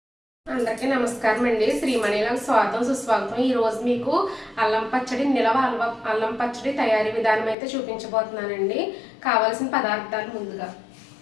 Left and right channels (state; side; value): drops out; right; at 7.6 s